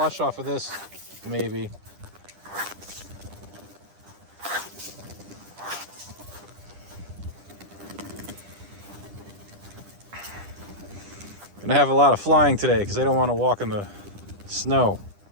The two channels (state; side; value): late; left; 10 ms